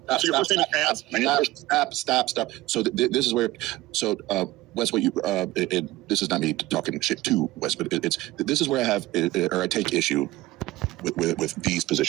your first name is As? My name is Stop. So this is where, Wes, what you, this is not me talking shit to Wes, but this is where I have, or I take issue with these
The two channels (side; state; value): left; quieter; 17.8 dB